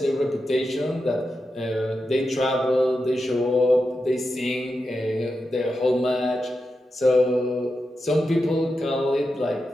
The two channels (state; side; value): normal; both; correlation 0.89